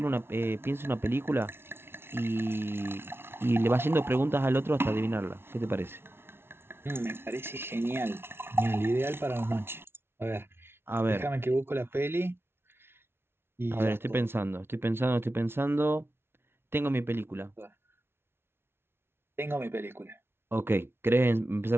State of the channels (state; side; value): late; left; 0.12 ms